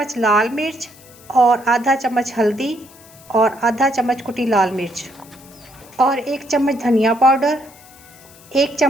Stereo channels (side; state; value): left; noise; hiss, 23 dB below the sound